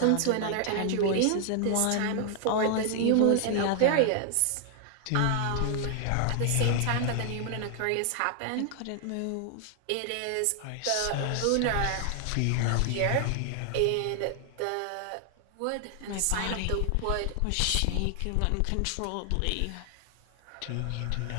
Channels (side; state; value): both; different; correlation 0.00